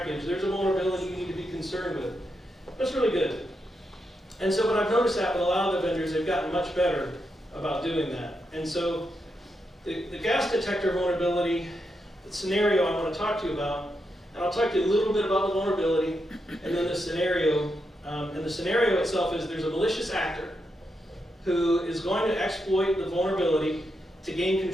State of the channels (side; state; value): both; normal; correlation 0.84